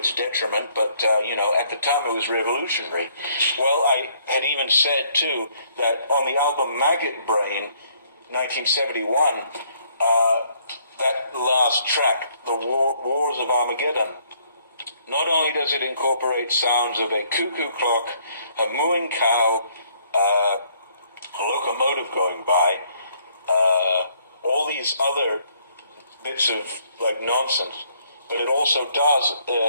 detriment, but, at the time it was revolutionary. Well, I had even said, too, that on the album Maggot Brain, 1971, that last track, the Wars of Armageddon, not only does it incorporate sounds of a cuckoo clock, a mooing cow, a locomotive going by, all these other bits of nonsense, but it also does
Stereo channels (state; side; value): inverted; both; correlation -0.65